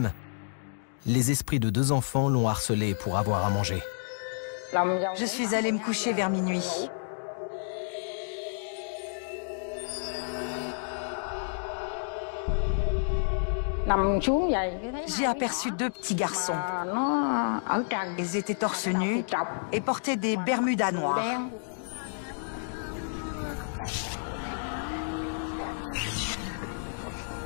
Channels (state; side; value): silent; right; digital silence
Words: les esprits de 2 enfants l'ont harcelée pour avoir à manger. Je suis allée me coucher vers minuit. J'ai aperçu 2 petits garçons. Ils étaient torse nus et portaient des bermudas noirs.